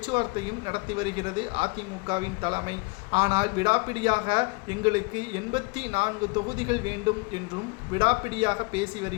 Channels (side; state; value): right; quieter; 28.5 dB